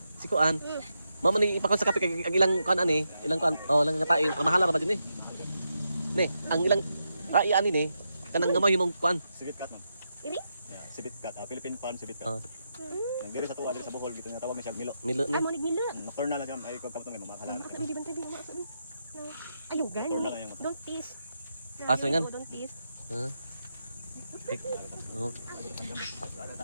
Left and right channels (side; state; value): both; inverted; correlation -0.84